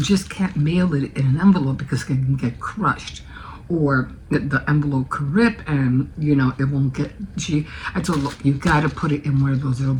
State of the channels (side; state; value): both; identical; correlation 1.00